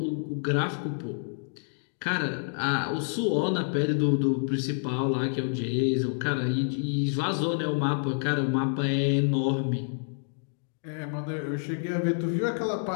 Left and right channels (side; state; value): right; silent; digital silence